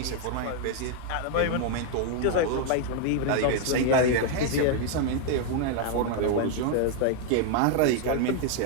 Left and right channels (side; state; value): both; different; correlation 0.00